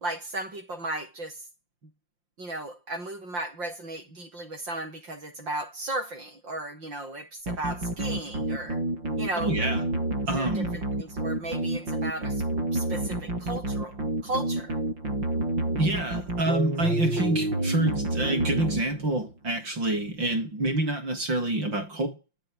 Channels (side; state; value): left; late; 5.7 ms